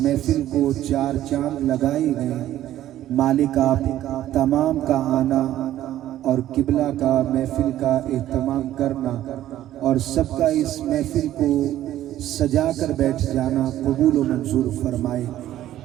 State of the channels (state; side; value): quieter; left; 13.1 dB